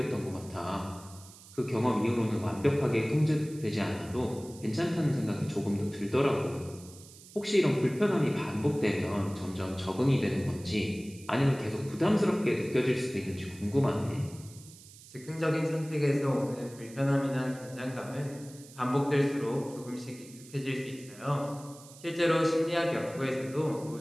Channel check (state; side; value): noise; right; hiss, 20 dB below the sound